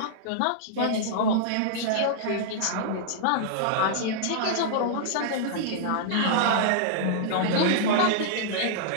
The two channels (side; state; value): both; different; correlation -0.02